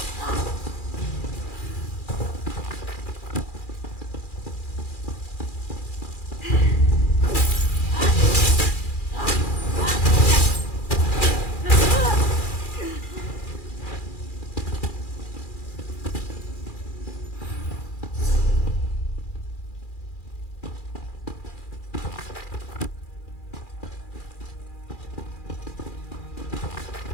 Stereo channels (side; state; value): right; late; 2.4 ms